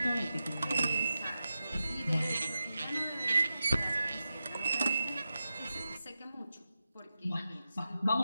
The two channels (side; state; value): both; inverted; correlation -0.91